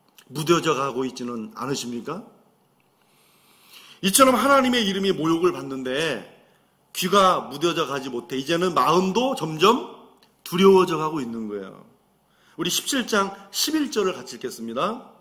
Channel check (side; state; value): both; identical; correlation 1.00